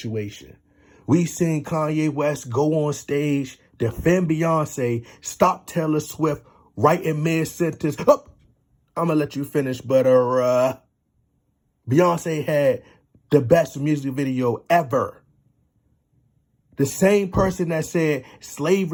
We seen Kanye West go on stage, defend Beyonce, stop Taylor Swift right in mid-sentence. Oh, I'm going to let you finish, but Beyonce had the best music video ever. The same person that said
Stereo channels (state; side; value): identical; both; correlation 1.00